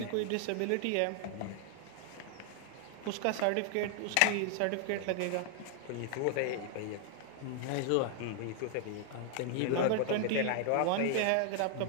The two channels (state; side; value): different; both; correlation 0.00